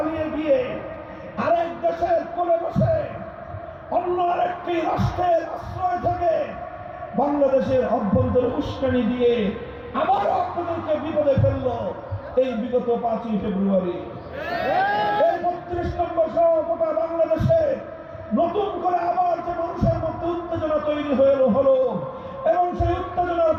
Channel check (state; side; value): identical; both; correlation 1.00